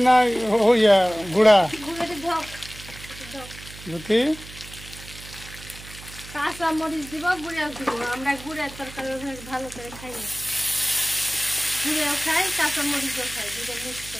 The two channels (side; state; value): right; noise; hum, 16 dB below the sound